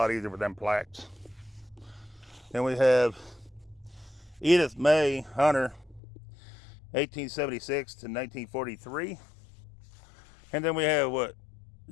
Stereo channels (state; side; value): drops out; right; at 6.0 s